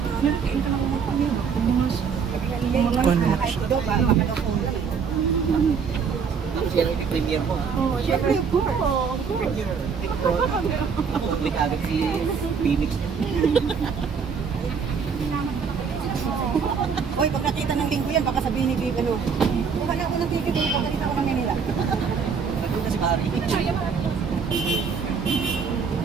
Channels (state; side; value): quieter; left; 6.1 dB